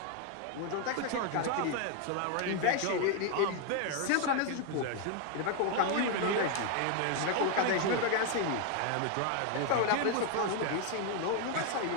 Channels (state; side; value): different; both; correlation 0.01